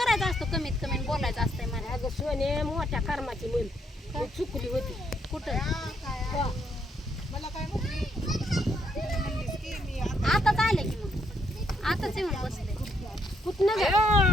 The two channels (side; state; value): both; normal; correlation 0.74